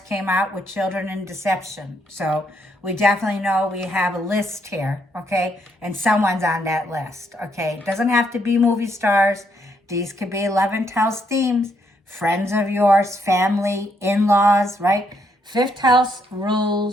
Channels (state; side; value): normal; both; correlation 0.74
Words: out with children and deception. So we definitely know we have a list here, okay? And someone's on that list, okay? It doesn't have to be movie stars. These could be 11th house themes, friends of yours, family, in-laws, right? 5th house